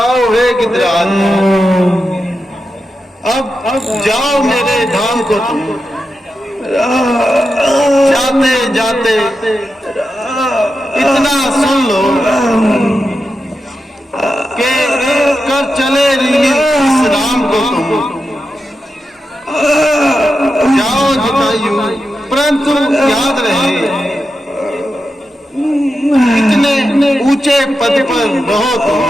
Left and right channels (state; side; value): normal; both; correlation 0.89